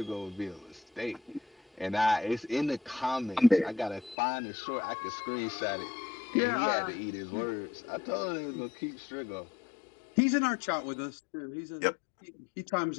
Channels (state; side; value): drops out; right; at 4.2 s